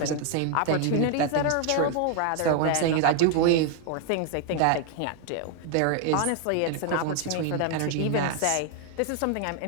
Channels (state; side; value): different; both; correlation 0.00